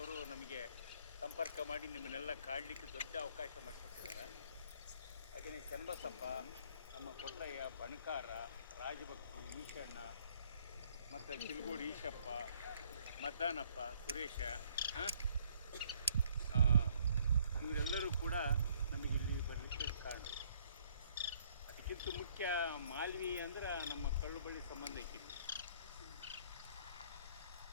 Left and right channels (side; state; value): both; inverted; correlation -0.62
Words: ನಮಗೆ ಸಂಪರ್ಕ ಮಾಡಿ ನಿಮ್ಮನ್ನೆಲ್ಲ ಕಾಡಲಿಕ್ಕೆ ದೊಡ್ಡ ಅವಕಾಶ ಮಾಡಿಕೊಟ್ಟಿದ್ದಾರೆ. ಹಾಗೆಯೇ ಚನ್ನಬಸಪ್ಪ, ನಮ್ಮ ಕೊಟ್ರಯ್ಯ, ಬಣಕಾರ, ರಾಜಭಕ್ತಿ, ಈಶಣ್ಣ, ಮತ್ತು ಚಿಲ್ಗೋಡು ಈಶಪ್ಪ, ಮದ್ದಾನಪ್ಪ, ಸುರೇಶ, ಇವರೆಲ್ಲರೂ ಕೂಡ ನಮಗಿಲ್ಲಿ ಬರಲಿಕ್ಕೆ ಕಾರಣ. ಅದಕ್ಕಿಂತ ಮುಖ್ಯ ಮಾಲ್ವಿ ಅಂದ್ರೆ ನಮ್ಮ ಕಳ್ಳು ಬಳ್ಳಿ ಸಂಬಂಧ ಐತಿ.